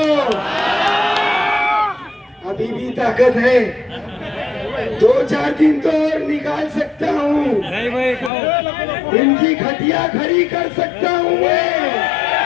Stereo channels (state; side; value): drops out; right; at 8.3 s